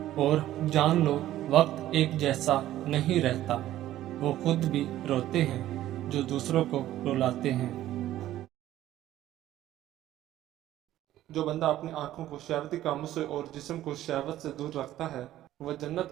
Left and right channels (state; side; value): quieter; left; 13.6 dB